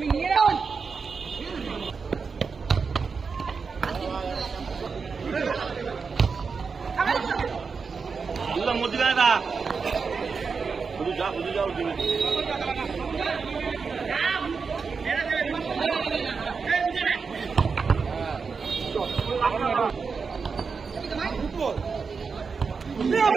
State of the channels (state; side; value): quieter; left; 5.2 dB